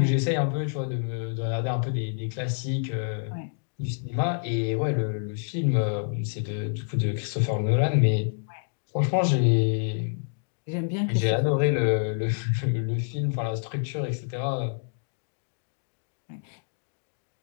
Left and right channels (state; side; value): silent; right; digital silence